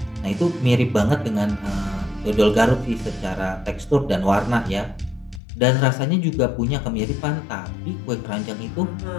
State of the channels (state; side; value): drops out; right; at 5.4 s